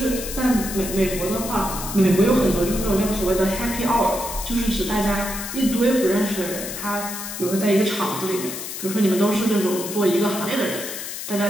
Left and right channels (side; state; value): left; noise; hiss, 7 dB below the sound